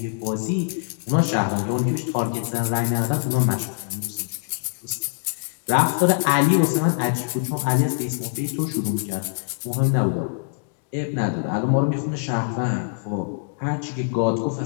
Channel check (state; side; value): silent; right; digital silence